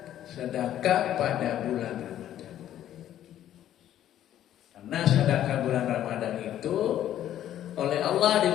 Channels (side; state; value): right; quieter; 11.7 dB